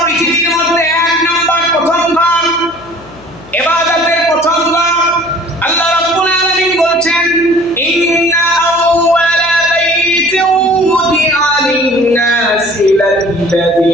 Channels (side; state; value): left; noise; hum, 22 dB below the sound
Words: পৃথিবীর মধ্যে 1 নাম্বার প্রথম ঘর, ইবাদতের প্রথম ঘর। আল্লাহ রাব্বুল আলামিন বলছেন, ইন্না আউওয়ালা বাইতিন উদিআ লিন-নাসি